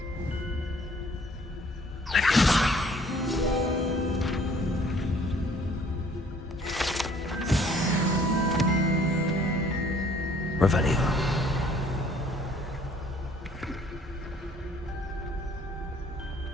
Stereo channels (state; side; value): normal; both; correlation 0.58